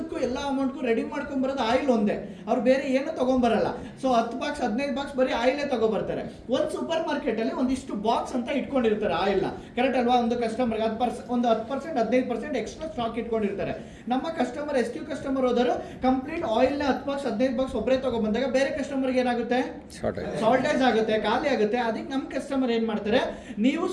ಎಲ್ಲ ಅಮೌಂಟ್ಗೂ ರೆಡಿ ಮಾಡ್ಕೊಂಡ್ ಬರೋದು ಆಯಿಲ್ ಒಂದೇ, ಅವ್ರು ಬೇರೆ ಏನು ತಗೊಂಡ್ಬರಲ್ಲ. ಸೊ 10 ಬಾಕ್ಸ್ 15 ಬಾಕ್ಸ್ ಬರೀ ಆಯಿಲೇ ತಗೊಬರ್ತಾರೆ. ಒಂದು ಸೂಪರ್ ಮಾರ್ಕೆಟ್ ಅಲ್ಲಿ ಒಂದಿಷ್ಟು ಬಾಕ್ಸ್ ಅಂತ ಇಟ್ಕೊಂಡಿರ್ತಾರೆ ಆಯಿಲ್ ನ, ಕರೆಕ್ಟ್ ಅಲ್ವಾ? ಒಂದು ಕಸ್ಟಮರ್ಗೆ 10% 15% ಎಕ್ಸ್ಟ್ರಾ ಸ್ಟಾಕ್ ಇಟ್ಕೊಂಡಿರ್ತಾರೆ. ನಮ್ಮ ಕಸ್ಟಮರ್ SQ ಕಸ್ಟಮರ್ ಹೋದರು ಕಂಪ್ಲೀಟ್ ಆಯಿಲ್ ನ 10 ಬಾಕ್ಸ್ 15 ಬಾಕ್ಸ್ ಒಬ್ಬರೇ ತಗೊಂಡ್ಬಂದಾಗ ಬೇರೆ ಕಸ್ಟಮರ್ಗೆ ಏನಾಗುತ್ತೆ, ಶಾರ್ಟೇಜ್ ಆಗುತ್ತೆ, ಖಾಲಿ ಆಗುತ್ತೆ. ಅದಕ್ಕೆ ನಮ್ಮ ಕಸ್ಟಮರ್ ಏನ್ ಮಾಡ್ತಾರೆ, ನೀವು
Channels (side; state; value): both; identical; correlation 1.00